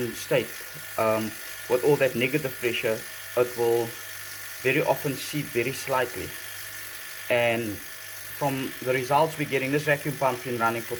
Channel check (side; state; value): both; identical; correlation 1.00